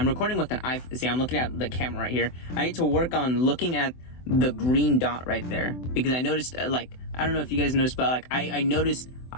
recording with an iPhone. See, I'm looking at the camera right here. I need to work on looking at the green dot right there, because I noticed, like, I don't know if you guys noticed, but like I noticed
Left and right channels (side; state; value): right; late; 24 ms